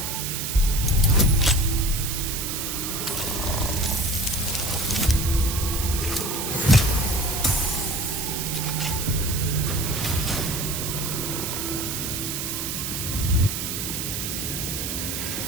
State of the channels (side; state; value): right; noise; hiss, 3 dB below the sound